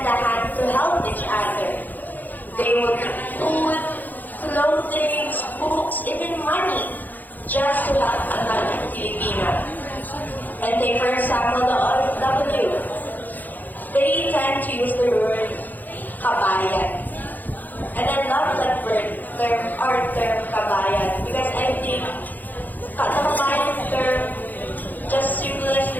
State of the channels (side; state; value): right; late; 0.084 ms